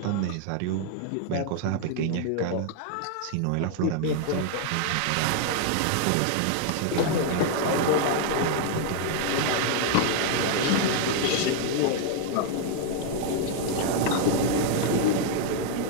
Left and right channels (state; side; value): different; both; correlation 0.00